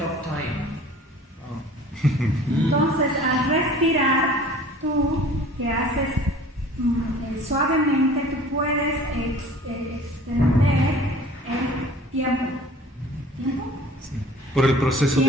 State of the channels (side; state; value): both; normal; correlation 0.47